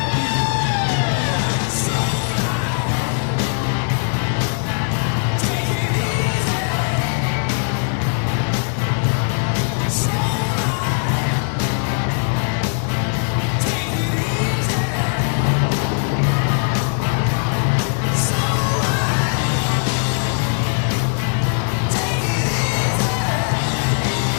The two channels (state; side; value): silent; right; digital silence